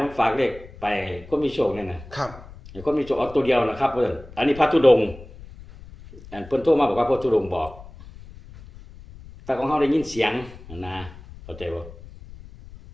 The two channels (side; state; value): left; noise; rumble, 18 dB below the sound